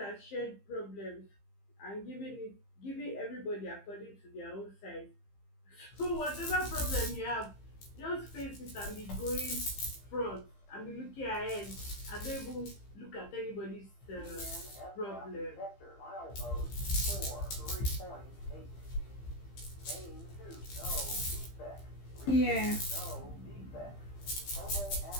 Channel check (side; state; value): right; late; 15 ms